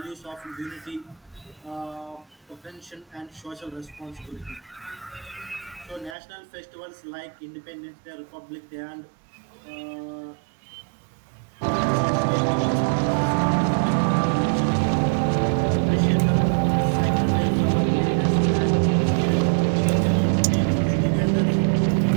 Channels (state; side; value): drops out; left; at 6.2 s